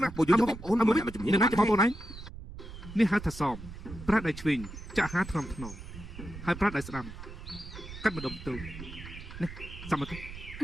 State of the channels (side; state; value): right; noise; rumble, 12 dB below the sound